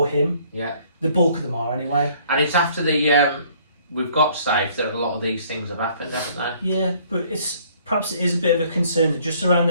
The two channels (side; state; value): both; inverted; correlation -0.60